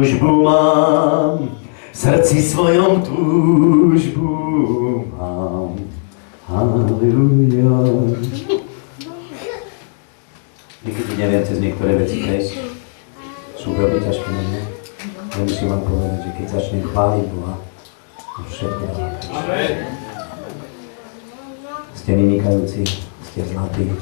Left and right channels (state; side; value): silent; right; digital silence